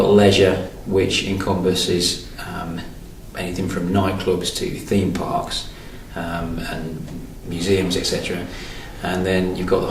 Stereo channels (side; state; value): both; identical; correlation 1.00